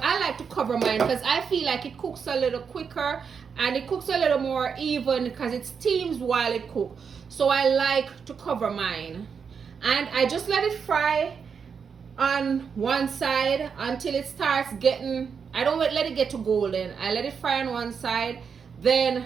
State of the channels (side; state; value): left; quieter; 6.3 dB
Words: I like to cover mine because I feel like it cooks a little quicker and it cooks a little more even because it steams while it cooks. So I like to cover mine. And I just let it fry on one side until it starts getting, I don't let it get to golden. I let it fry on one side, then